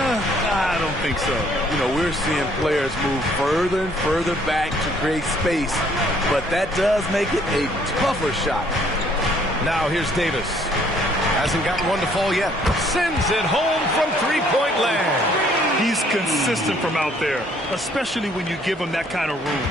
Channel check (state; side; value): normal; both; correlation 0.63